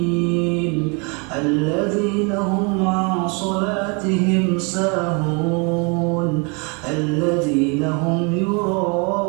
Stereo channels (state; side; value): quieter; left; 32.8 dB